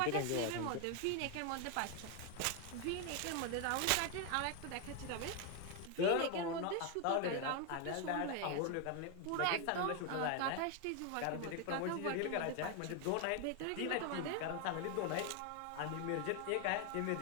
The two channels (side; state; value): both; different; correlation 0.01